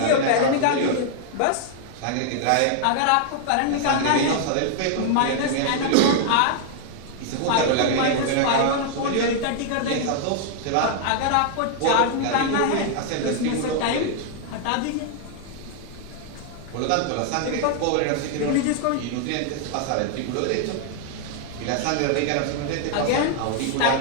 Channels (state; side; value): different; both; correlation 0.00